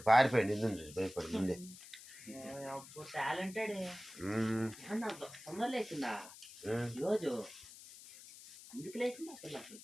పారిపోయాడు. ఇందు భయపడి ముందే. టాలెంటెడ్. తొందర లేచిందా రోజు? ఎందుకు లేచిందా పిల్లకి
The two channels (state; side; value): noise; left; hiss, 16 dB below the sound